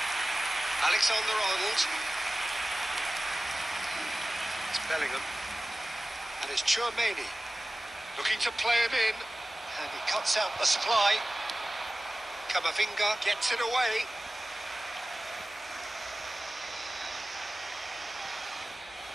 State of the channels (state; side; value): normal; both; correlation 0.97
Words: Alexander-Arnold. It's Bellingham. And it's Tchouaméni. Looking to play him in. And he cuts out the supply. Camavinga gets it away.